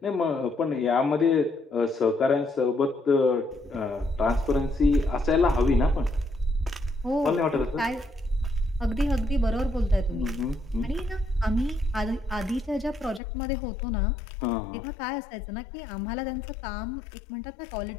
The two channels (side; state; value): right; drops out; at 13.2 s